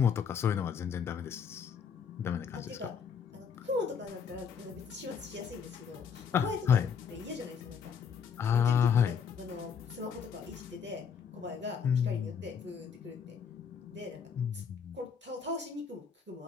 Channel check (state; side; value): quieter; right; 6.9 dB